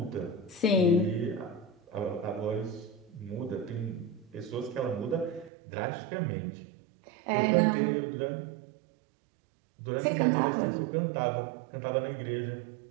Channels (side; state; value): left; drops out; at 5.5 s